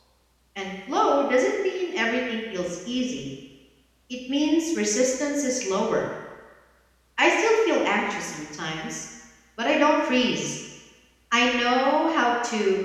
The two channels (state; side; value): identical; both; correlation 1.00